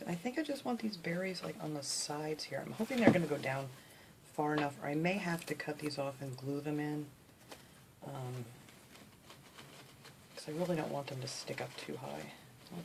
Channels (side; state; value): both; identical; correlation 1.00